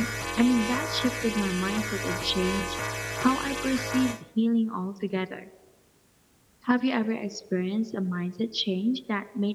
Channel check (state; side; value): identical; both; correlation 1.00